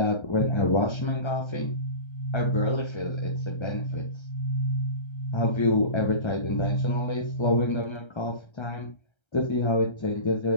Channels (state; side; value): late; right; 1.3 ms